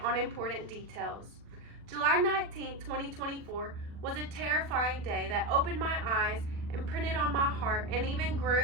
on important details. July 19, 2024 was a terrifying day that opened my eyes, imprinted on my heart, and even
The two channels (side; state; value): left; late; 40 ms